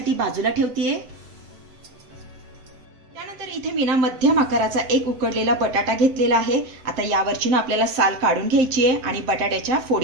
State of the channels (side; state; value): left; late; 7.9 ms